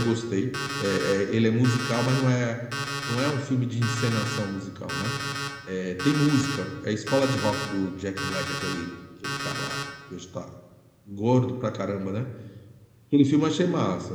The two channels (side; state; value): both; identical; correlation 1.00